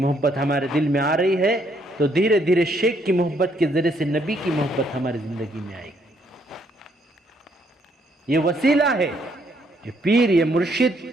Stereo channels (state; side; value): normal; both; correlation 0.70